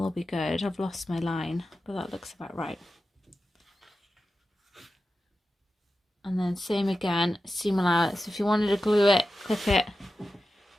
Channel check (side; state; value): both; normal; correlation 0.92